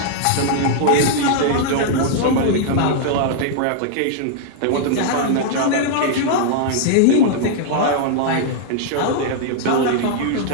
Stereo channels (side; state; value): both; different; correlation -0.01